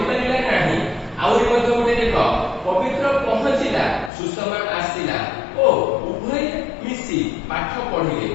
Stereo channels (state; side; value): drops out; right; at 4.1 s